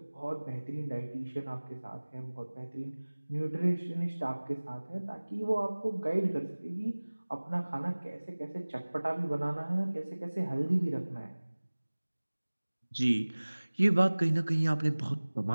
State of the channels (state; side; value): inverted; both; correlation -1.00